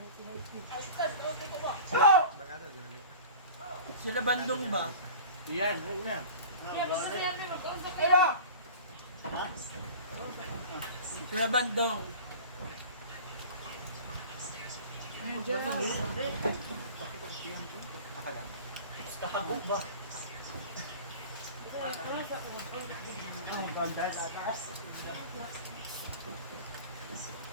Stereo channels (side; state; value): both; inverted; correlation -0.38